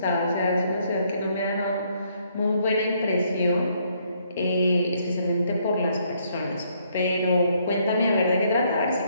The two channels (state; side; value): inverted; both; correlation -0.70